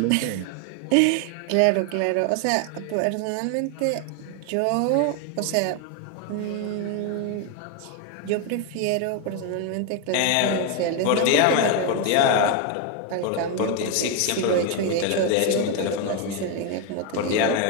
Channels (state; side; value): different; both; correlation 0.01